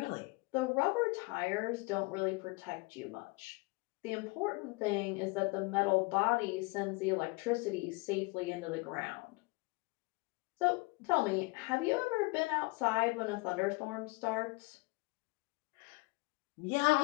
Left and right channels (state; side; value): quieter; right; 26.4 dB